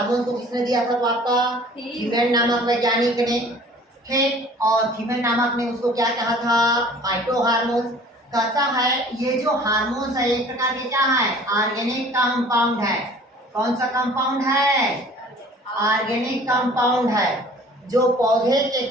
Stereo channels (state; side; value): normal; both; correlation 0.49